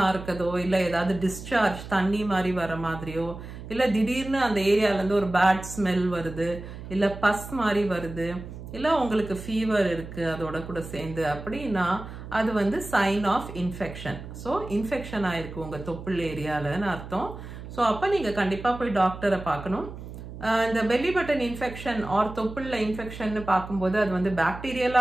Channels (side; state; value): right; noise; hum, 12 dB below the sound